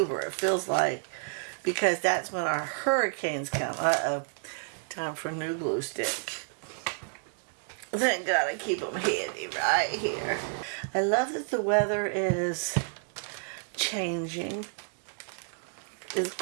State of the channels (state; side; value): silent; left; 57 dB below the other